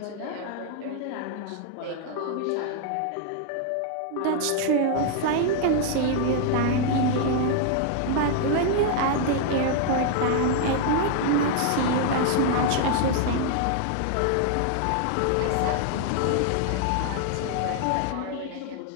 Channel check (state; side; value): different; both; correlation 0.00